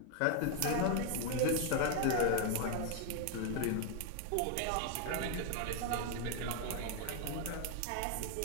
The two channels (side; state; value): both; different; correlation 0.00